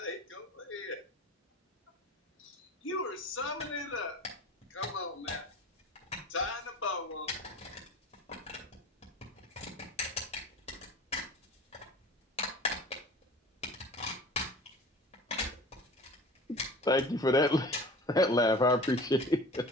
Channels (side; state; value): both; normal; correlation 0.40